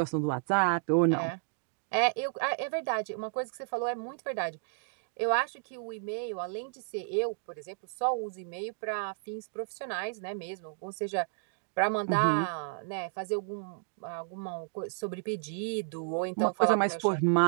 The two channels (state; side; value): silent; left; digital silence